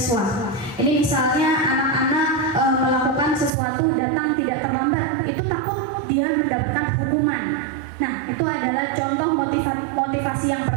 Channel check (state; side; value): drops out; left; at 3.5 s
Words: Ini misalnya anak-anak melakukan sesuatu datang tidak terlambat, itu takut dia mendapatkan hukuman. Nah, itu adalah contoh motivasi yang